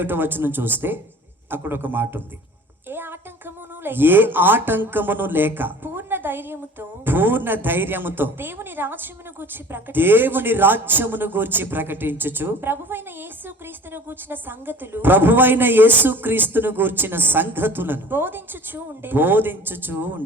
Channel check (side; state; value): both; normal; correlation 0.45